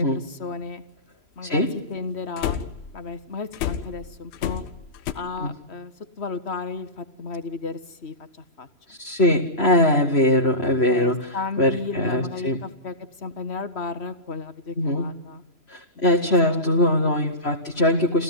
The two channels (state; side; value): late; right; 3.0 ms